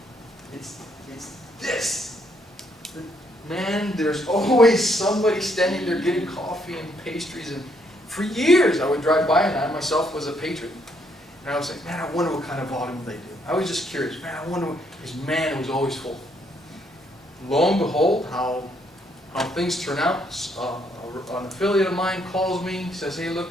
this. Man, there's always somebody standing there getting coffee and pastries, and for years I would drive by, and I myself was a patron. And I was like, man, I wonder what kind of volume they do. I was just curious, man, I wonder what, because man, it was always full. Lo and behold, how things turn out. An affiliate of mine calls me, says, hey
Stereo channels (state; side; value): normal; both; correlation 0.71